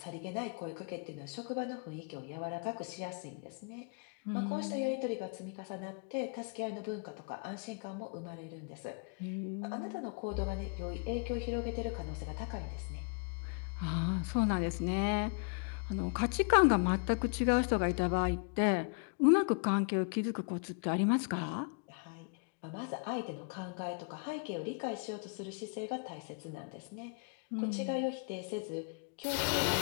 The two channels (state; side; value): quieter; right; 36.9 dB